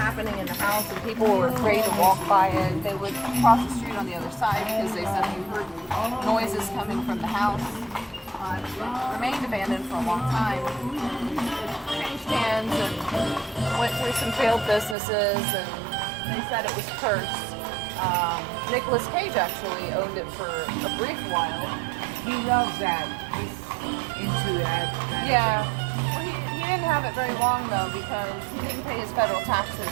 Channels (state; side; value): drops out; left; at 15.0 s